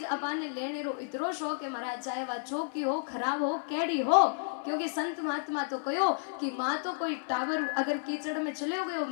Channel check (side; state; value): right; silent; 57 dB below the other